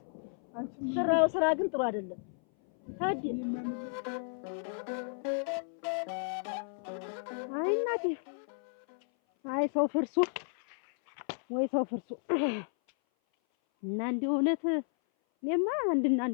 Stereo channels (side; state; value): right; silent; 56 dB below the other